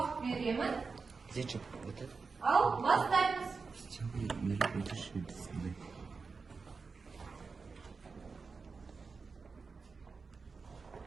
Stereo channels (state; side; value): quieter; left; 4.7 dB